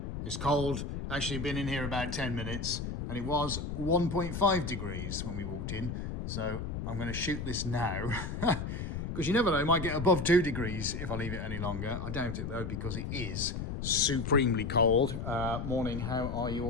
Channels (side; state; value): left; noise; rumble, 5 dB below the sound